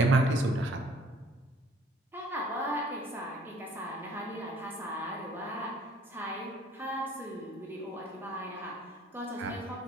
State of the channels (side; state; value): both; normal; correlation 0.57